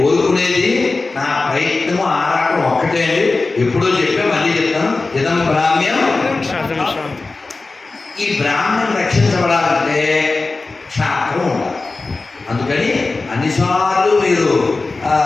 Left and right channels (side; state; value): right; quieter; 3.6 dB